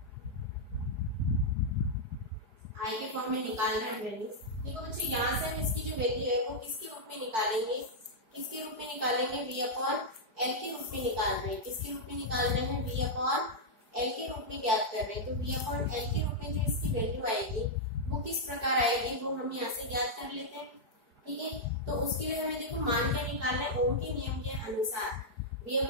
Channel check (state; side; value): late; left; 4.5 ms